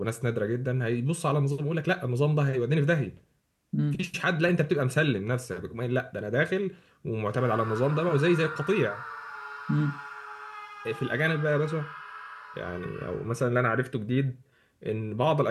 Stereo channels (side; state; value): both; identical; correlation 1.00